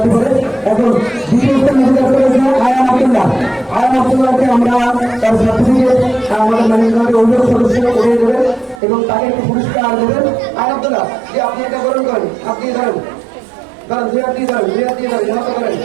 পারে। এখন দ্বিতীয় স্থানে অধিকার করেছে আয়ান আব্দুল্লাহ। আয়ান আব্দুল্লাহকে আমরা তার সার্টিফিকেট আমাদের ম্যানেজমেন্টের অভিযোগ সদস্য উঠিয়ে দেবেন এবং তাকে একটি পুরস্কার দেবেন। আয়ান আব্দুল্লাহ, যে আপনি এটা গ্রহণ করেন, আপনি ধরেন ধরেন, দুই হাত দিয়ে ধরেন, দুই হাত দিয়ে ধরেন, এমন করেন,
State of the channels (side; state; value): left; drops out; at 8.8 s